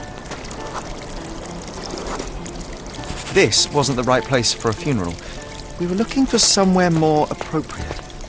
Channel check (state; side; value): identical; both; correlation 1.00